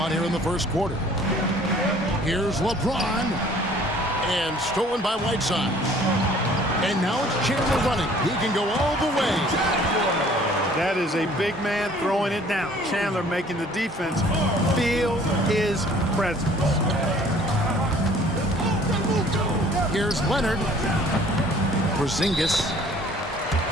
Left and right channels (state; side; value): normal; both; correlation 0.54